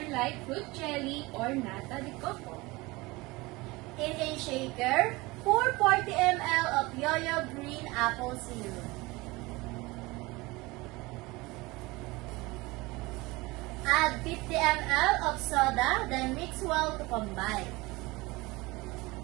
like fruit jelly or nata de coco. In a shaker, pour 40 ml of Yoyo Green Apple Syrup. Add 50 ml of soda, then mix well to combine.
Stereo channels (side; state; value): left; quieter; 22.5 dB